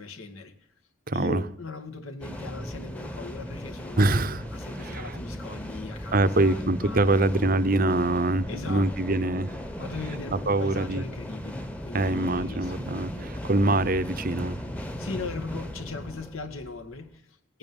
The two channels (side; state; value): both; normal; correlation 0.52